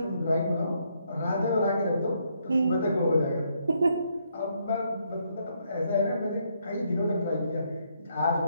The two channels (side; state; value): both; inverted; correlation -0.74